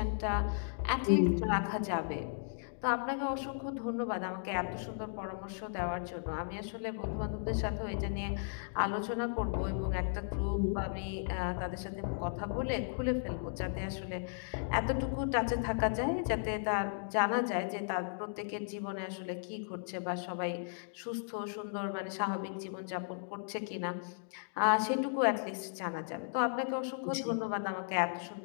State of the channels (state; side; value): silent; right; digital silence